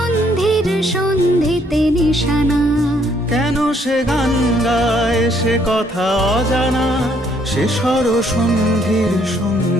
সন্ধিতে নিশানা। কেন সে গান গায় সে কথা অজানা, সে স্বর সন্ধির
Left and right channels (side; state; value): both; normal; correlation 0.68